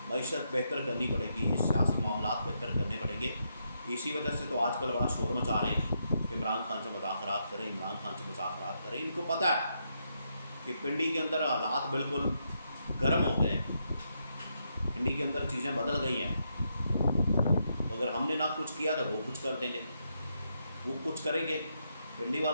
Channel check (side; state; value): both; inverted; correlation -0.80